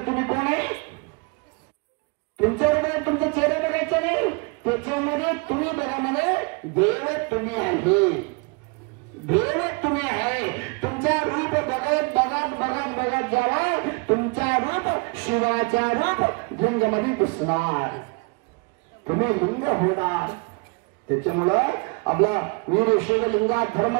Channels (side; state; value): left; quieter; 32.1 dB